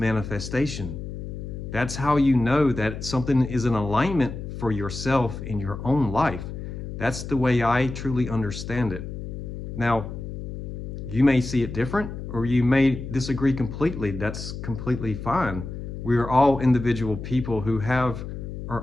That's how you know that something is in alignment for yourself in your own life. That's the way I truly understand it. Now, You may see it different, or you may disagree completely. That's completely fine. We are all individual people who have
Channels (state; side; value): noise; left; hum, 8 dB below the sound